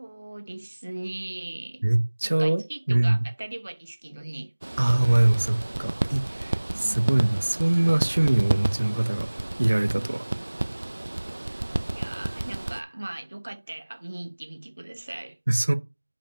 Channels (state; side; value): inverted; both; correlation -1.00